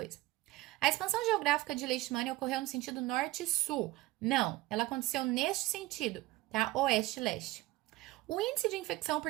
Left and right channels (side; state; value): left; quieter; 18.2 dB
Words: A expansão geográfica de Leishmania ocorreu no sentido norte-sul. Não, ela aconteceu neste sentido, tá? Oeste-leste. O índice de infecção